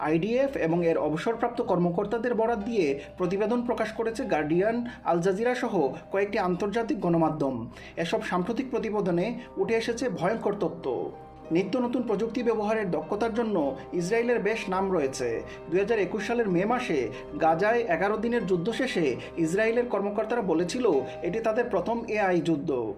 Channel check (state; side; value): identical; both; correlation 1.00